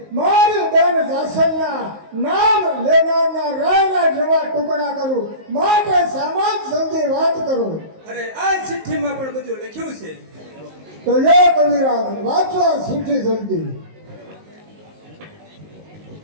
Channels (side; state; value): left; late; 19 ms